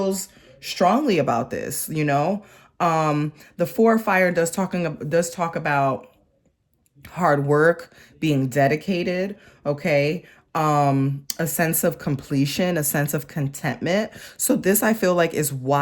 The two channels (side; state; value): both; identical; correlation 1.00